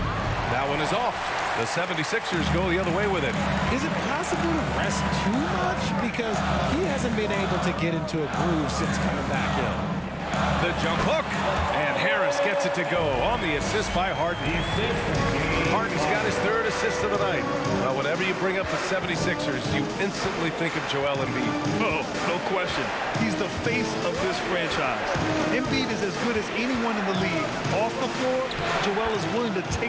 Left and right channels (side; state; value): both; identical; correlation 1.00